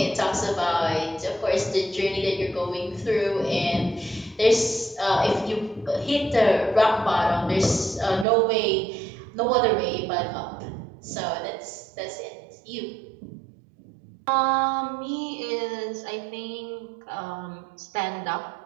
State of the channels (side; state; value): left; drops out; at 8.2 s